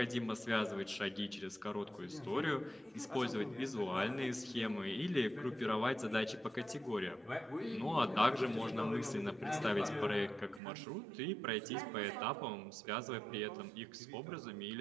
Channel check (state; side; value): drops out; left; at 10.6 s